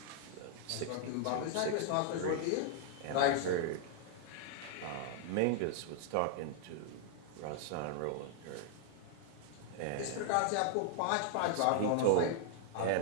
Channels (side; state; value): both; different; correlation -0.01